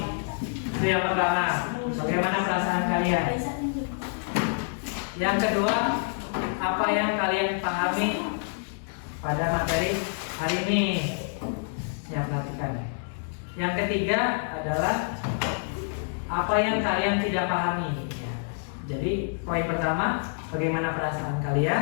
Itu yang pertama. Bagaimana perasaan kalian? Yang kedua, apa yang kalian pahami pada materi hari ini? Ya, perhatikan. Yang ketiga adalah apa yang kalian tidak pahami. Ya. Jadi poin pertama, bagaimana perasaan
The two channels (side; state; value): right; silent; digital silence